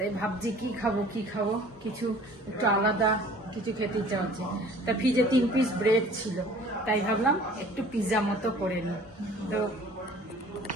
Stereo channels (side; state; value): both; normal; correlation 0.49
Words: ভাবছি কি খাবো কিছু একটু আলাদা কিছু খেতে ইচ্ছা হচ্ছে। তা ফ্রিজে 3 পিস ব্রেড ছিল, তাই ভাবলাম একটু পিৎজা মতো করে নিই। তো